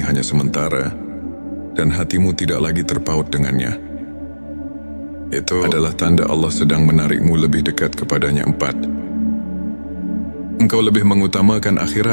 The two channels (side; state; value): both; inverted; correlation -1.00